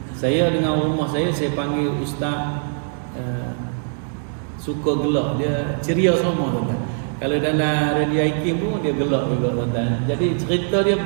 Saya dengan rumah saya panggil Ustaz suka gelak, dia ceria semua tuan-tuan. Kalau dalam radio IKIM pun dia gelak juga tuan-tuan. Jadi cerita dia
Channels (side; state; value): left; silent; digital silence